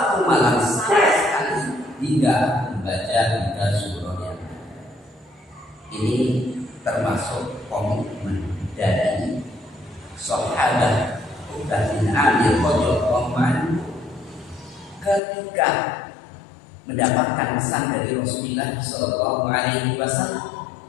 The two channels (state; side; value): drops out; right; at 15.2 s